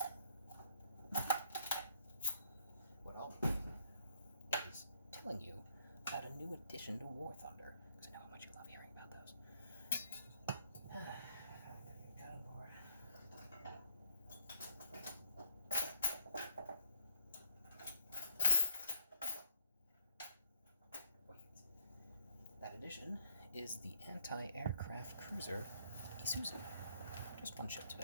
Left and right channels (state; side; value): inverted; both; correlation -0.68